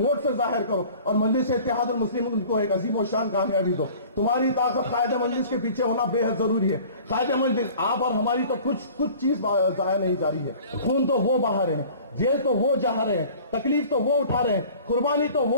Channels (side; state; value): both; inverted; correlation -0.46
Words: سے ظاہر کرو اور مجلس اتحاد المسلمین کو ایک عظیم و شان کامیابی دو. تمہاری طاقت قائد مجلس کے پیچھے ہونا بے حد ضروری ہے. قائد مجلس آپ اور ہماری تو کچھ چیز ضائع نہیں جا رہی ہے. خون تو وہ بہا رہے ہیں، جیل تو وہ جہا رہے ہیں، تکلیف تو وہ اٹھا رہے ہیں، قربانی تو